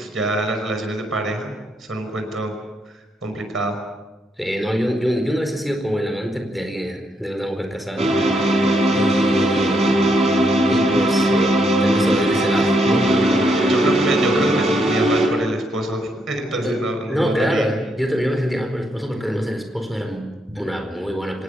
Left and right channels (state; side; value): normal; both; correlation 0.77